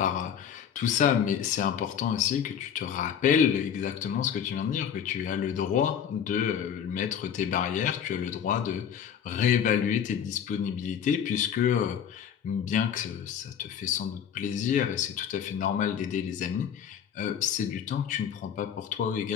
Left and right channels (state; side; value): quieter; right; 8.5 dB